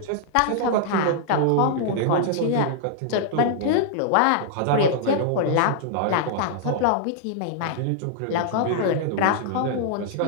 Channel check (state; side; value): different; both; correlation -0.01